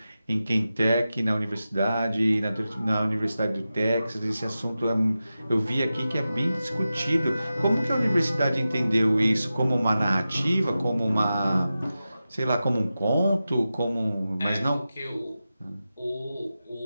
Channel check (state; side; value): inverted; both; correlation -0.93